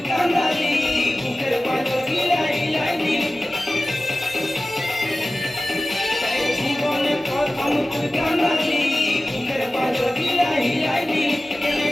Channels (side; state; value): both; normal; correlation 0.96